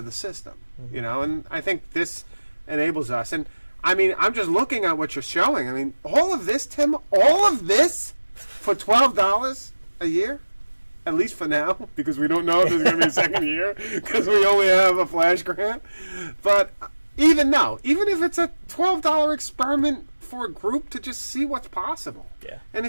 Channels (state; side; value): inverted; both; correlation -1.00